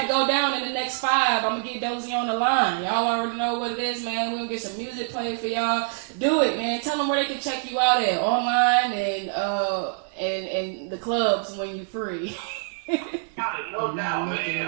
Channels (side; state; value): left; silent; 62 dB below the other